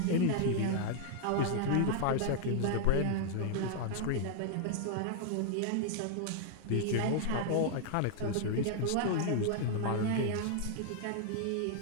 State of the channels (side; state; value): both; different; correlation -0.01